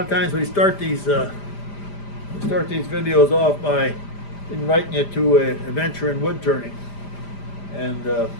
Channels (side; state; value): right; late; 5.0 ms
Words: of times we start these videos off by inviting you to an adventure in wood turning, and